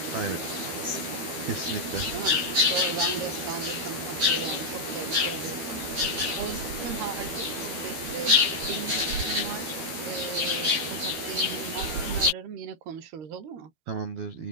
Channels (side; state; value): left; late; 13 ms